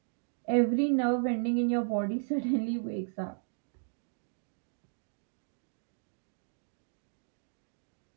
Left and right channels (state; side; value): silent; left; digital silence